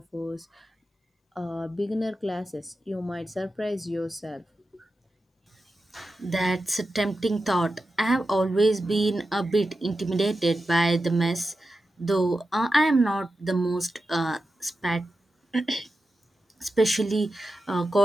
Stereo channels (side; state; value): both; normal; correlation 0.91